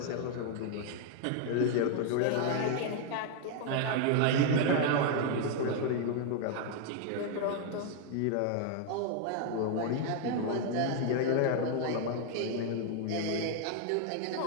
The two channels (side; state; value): both; different; correlation 0.00